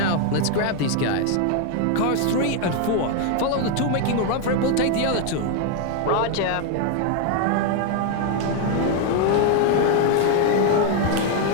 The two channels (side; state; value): both; different; correlation 0.01